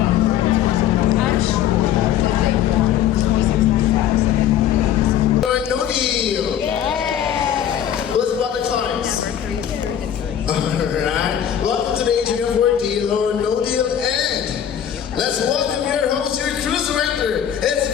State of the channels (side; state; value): right; quieter; 9.9 dB